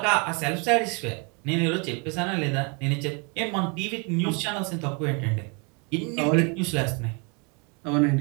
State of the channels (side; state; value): left; quieter; 33.0 dB